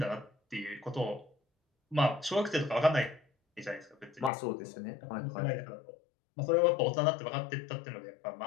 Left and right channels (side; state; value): right; drops out; at 4.3 s